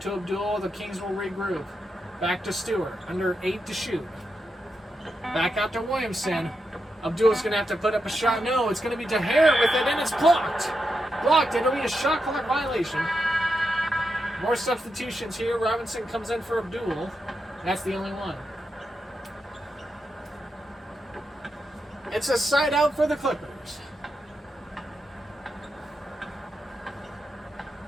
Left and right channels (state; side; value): normal; both; correlation 0.86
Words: to Abdul. The Kings will regroup. Back to Stewart. Under 8 to shoot. Back out to Williamson. Abdul's going to have to put up a shot. No, it's going to be DeHare with it, and it's blocked. Blocked. It'll be a shot clock violation. More substitutions here. Robinson comes in for Abdul. That's the only one. It's a side out for the Clippers.